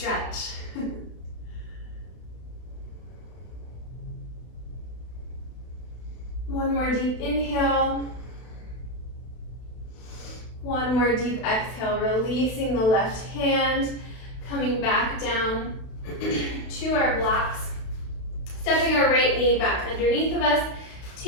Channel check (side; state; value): right; late; 32 ms